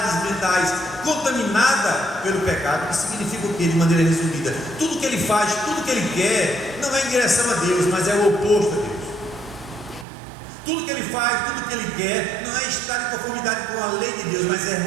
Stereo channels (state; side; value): drops out; left; at 10.1 s